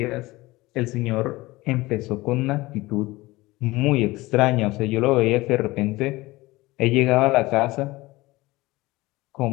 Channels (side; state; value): right; quieter; 20.2 dB